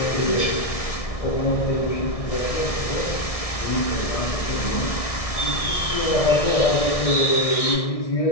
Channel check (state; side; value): late; right; 1.6 ms